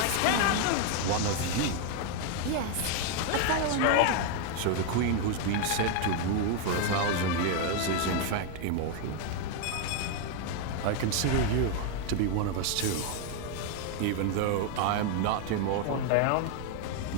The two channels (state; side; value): different; both; correlation 0.01